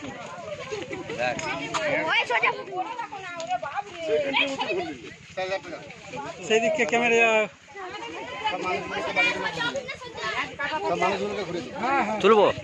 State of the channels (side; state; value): both; identical; correlation 1.00